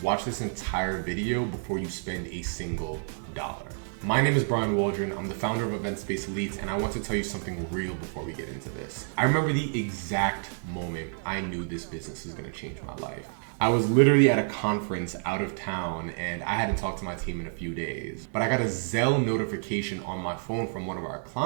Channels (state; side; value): silent; left; 59 dB below the other